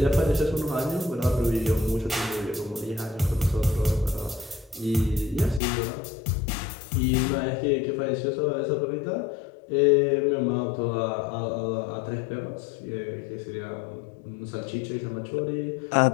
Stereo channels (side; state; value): right; drops out; at 5.6 s